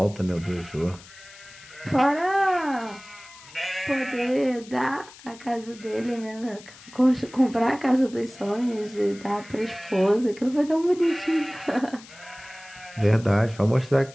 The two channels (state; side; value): noise; left; hiss, 20 dB below the sound